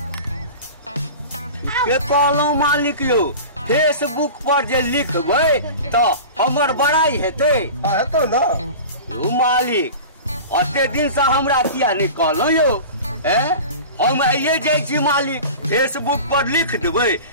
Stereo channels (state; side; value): inverted; both; correlation -0.34